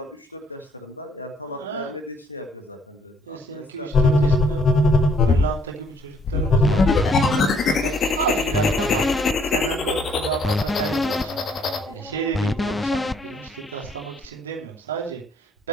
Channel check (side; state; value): both; normal; correlation 0.64